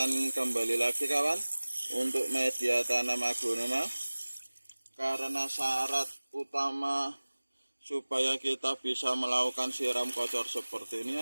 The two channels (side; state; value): both; inverted; correlation -1.00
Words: kembali lagi kawan, untuk media tanam aglonema, karena syarat utama supaya kita bisa melakukan siram kocor seperti